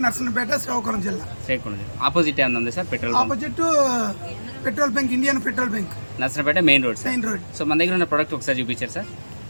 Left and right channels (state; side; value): inverted; both; correlation -1.00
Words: Narasannapeta, Srikakulam జిల్లా. ఆపోజిట్ ఏమన్నా ఉంది sir? Petrol opposite petrol bunk, Indian petrol bunk, Narasannapeta main road. So మన దగ్గర ఉన్న ప్రొడక్ట్ ఒకసారి చూపించారు సార్.